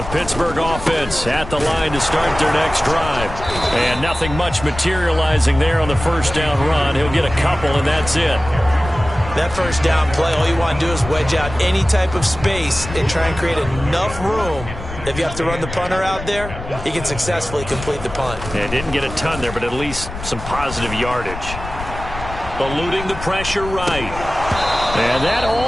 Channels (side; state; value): left; noise; rumble, 10 dB below the sound